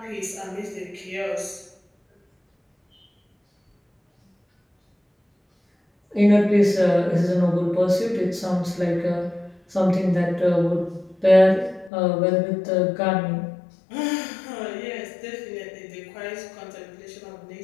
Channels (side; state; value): right; drops out; at 11.9 s